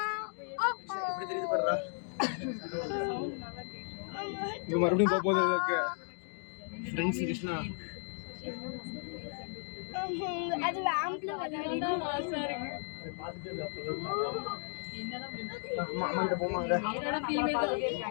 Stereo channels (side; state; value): right; silent; 55 dB below the other